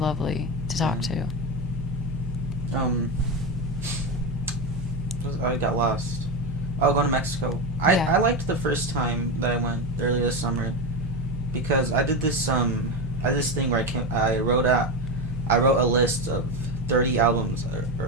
to talk to. I got lost. Oh, going to Mexico. I liked the first time that I went earlier this summer, because I did this thing where I wrote a list of 30 albums, or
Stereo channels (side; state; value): both; normal; correlation 0.15